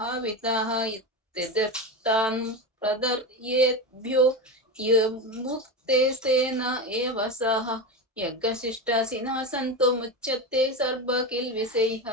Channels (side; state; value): both; normal; correlation 0.19